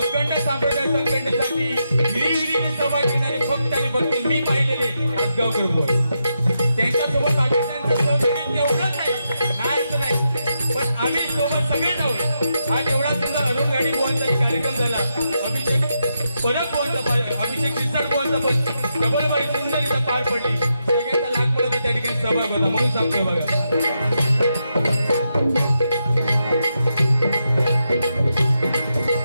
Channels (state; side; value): inverted; both; correlation -0.84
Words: संप्रदाय संघटनेसाठी हिरिरीने सभा घेणारे फक्त आणि फक्त मी पाहिलेले आसगावकर बुवा. त्यांच्यासोबत बाकीच्यांचं सहकार्य एवढंच नाही असं नाही, पण आम्ही सोबत सगळे जाऊ. आज एवढा सुद्धा अरुण गाडी बुवांचा कार्यक्रम झाला. अभिषेक परब बुवांचा, अभिषेक शिरसाट बुवांचा पण डबलबाई सुंदर इथं पार पडली. सगळ्यांचा लाख मला त्या ठिकाणी सहभाग होता म्हणून सांगते बघा.